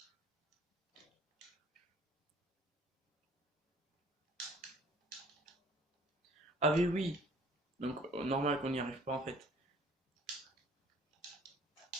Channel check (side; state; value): both; normal; correlation 0.54